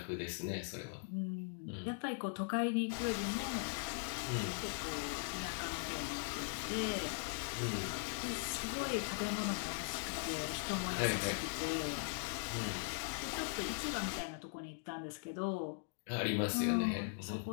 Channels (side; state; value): right; silent; digital silence